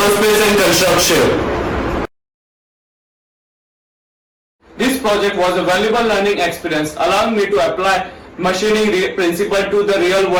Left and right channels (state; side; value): identical; both; correlation 1.00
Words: and construction. This project was a valuable learning experience, allowing me to apply machining principle to the